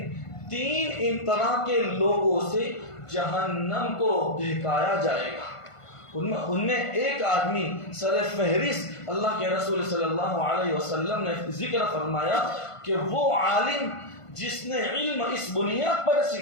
3 طرح کے لوگوں سے جہنم کو دہکایا جائے گا۔ ان میں ایک آدمی سر فہرست اللہ کے رسول صلی اللہ علیہ وسلم نے ذکر فرمایا کہ وہ عالم جس نے علم اس بنیاد پر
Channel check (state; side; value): late; right; 1.5 ms